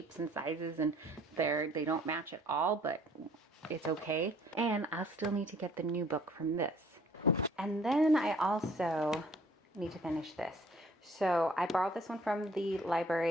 and sizes, and they don't match at all, but it's okay. And I'll still need to get the new book from this. And then I also need to finish this. So I borrowed this one from the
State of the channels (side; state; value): both; normal; correlation 0.57